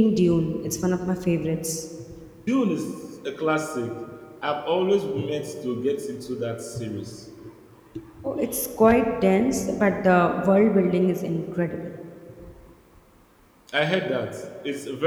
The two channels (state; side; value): identical; both; correlation 1.00